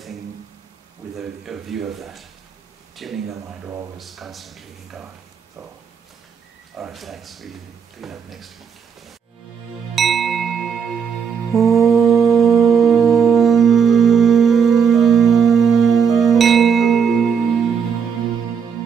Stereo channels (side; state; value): left; quieter; 6.8 dB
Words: with a view of that, tuning the mind always, constantly in God. So, all right, thanks. We pick up next week.